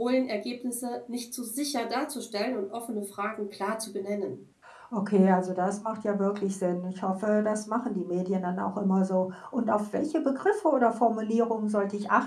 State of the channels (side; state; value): both; identical; correlation 1.00